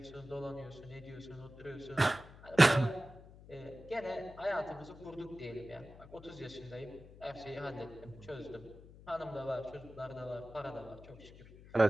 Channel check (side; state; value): left; noise; hum, 18 dB below the sound